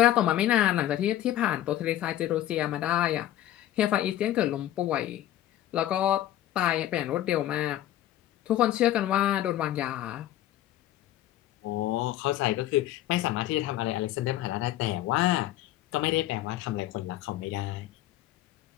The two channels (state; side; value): quieter; right; 13.3 dB